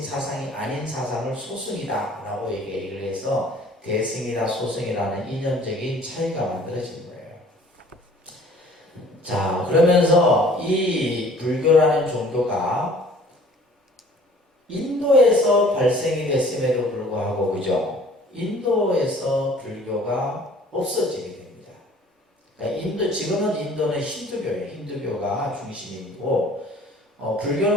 사상이 아닌 사상을 소승이다라고 얘기를 해서 대승이다 소승이라는 이념적인 차이가 만들어진 거예요. 자, 그러면서 이 불교라는 종교가 인도에서 발생이 됐음에도 불구하고 그죠? 인도에서 불교가 없어지게 됩니다. 그러니까 지금은 인도는 힌두교예요. 힌두교가 중심이고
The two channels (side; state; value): both; normal; correlation 0.52